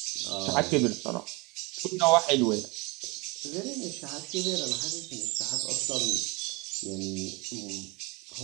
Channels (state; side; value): quieter; left; 26.1 dB